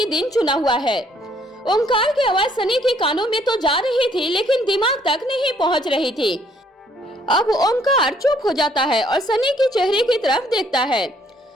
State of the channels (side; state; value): both; normal; correlation 0.65